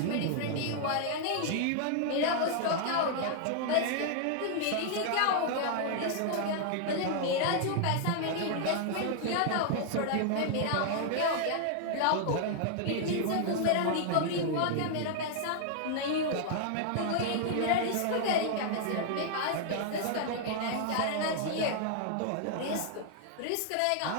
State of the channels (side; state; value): both; different; correlation -0.01